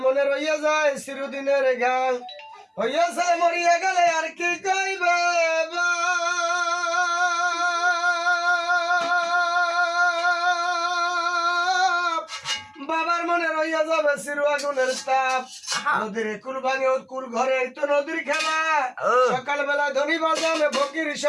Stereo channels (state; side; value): identical; both; correlation 1.00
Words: মনে রইয়া যায় চিরদিনের গান। হইয়া ছেলে মরিয়া গেলে আর কি কইবে বাপ, বাবার মনে রইয়া যাবে চির আগুনের তাপ। নদীর কুল ভাঙে ওর কুল ঘরে তো নদীর খেলা, সকালবেলা ধনী বাজানে ফকির